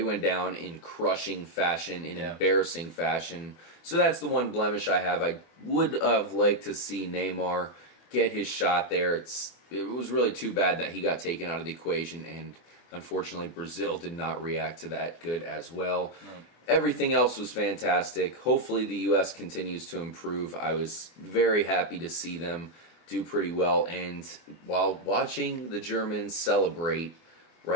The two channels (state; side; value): late; right; 24 ms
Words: down in crushing fashion, in embarrassing fashion. So that's the one blemish I have. I would have liked to see Neymar get his shot there. It was really too bad that he got taken out of the equation, and unfortunately, Brazil did not react to that good as well. No. Everything else was fantastic. Hopefully, the U.S. continues to improve. I was very happy to see them do pretty well. And while watching the Germans celebrate,